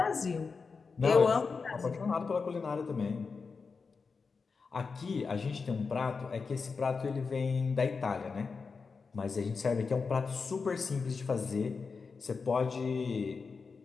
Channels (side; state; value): right; quieter; 4.9 dB